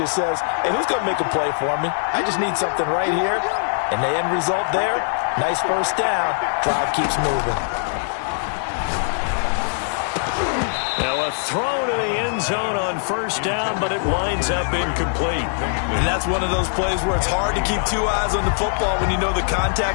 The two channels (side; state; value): right; silent; 56 dB below the other